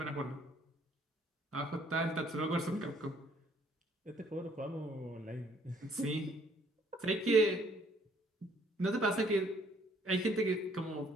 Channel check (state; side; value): normal; both; correlation 0.63